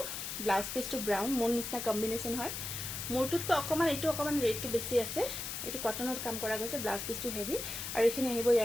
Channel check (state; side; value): noise; left; hiss, 5 dB below the sound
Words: ব্লাউজ পিচটো ব্ৰাউন মোৰ নিচিনা কম্বিনেশ্যন হয় মোৰটোতকৈ অকণমান এইটো অকণমান ৰেটটো বেছি আছে এইটো কটনত কাম কৰা গৈছে ব্লাউজ পিচটো হেভি আৰু এইখিনি আহিব